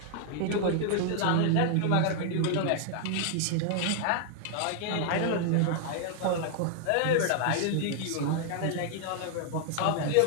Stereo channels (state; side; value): different; both; correlation 0.00